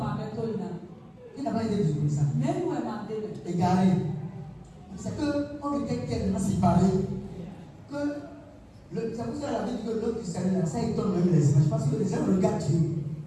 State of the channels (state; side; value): identical; both; correlation 1.00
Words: Il n'a pas été désobéissant. Égaré. C'est qu'on était tellement séparés que c'est pour ça que la vie dit que l'autre du salut là, ça étonne même les images. Parce que les gens regardent Dieu.